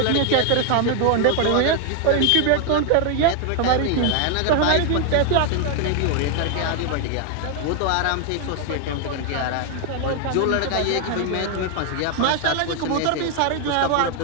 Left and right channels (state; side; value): different; both; correlation 0.00